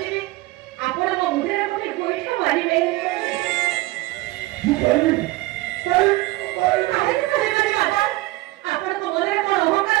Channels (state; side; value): quieter; left; 19.5 dB